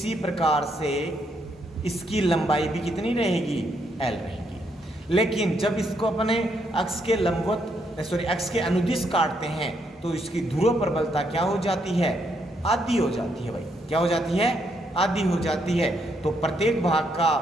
प्रकार से इसकी लंबाई भी कितनी रहेगी, l रहेगी। लेकिन जब इसको अपने अक्ष के लंबवत अक्ष के अनुदिश काटते हैं तो इसकी ध्रुव प्रबलता क्या हो जाती है, आधी हो जाती है भाई, क्या हो जाती है, आधी हो जाती है। तो प्रत्येक भाग का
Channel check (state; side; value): normal; both; correlation 0.75